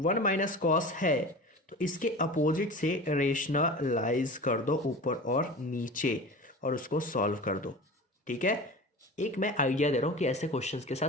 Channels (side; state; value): both; normal; correlation 0.34